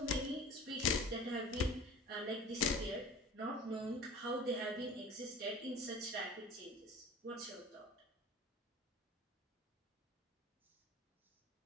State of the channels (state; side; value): normal; both; correlation 0.41